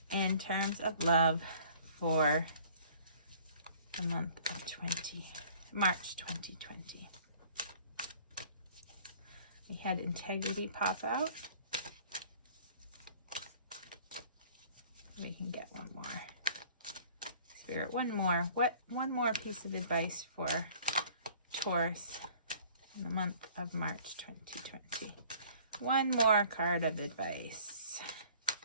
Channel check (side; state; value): both; inverted; correlation -0.53